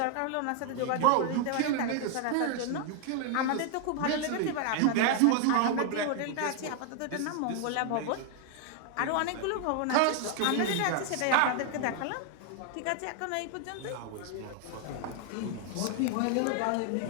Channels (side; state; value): both; different; correlation 0.00